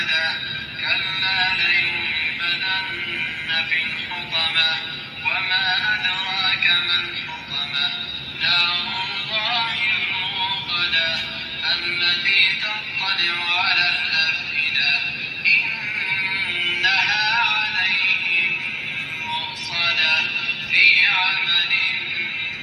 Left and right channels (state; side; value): identical; both; correlation 1.00